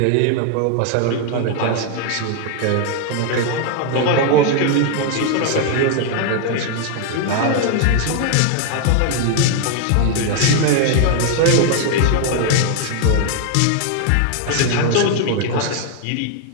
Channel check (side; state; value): both; different; correlation 0.00